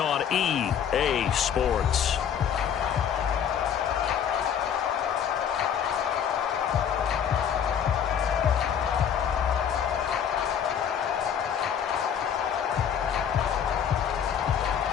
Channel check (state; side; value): quieter; right; 8.4 dB